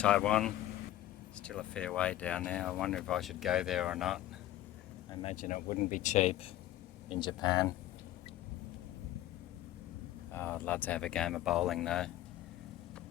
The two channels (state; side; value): quieter; right; 14.0 dB